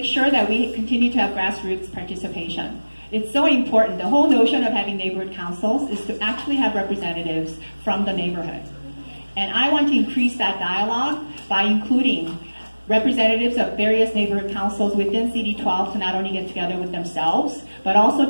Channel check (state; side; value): inverted; both; correlation -1.00